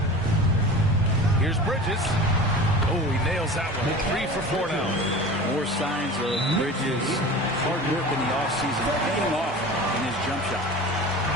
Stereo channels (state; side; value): normal; both; correlation 0.36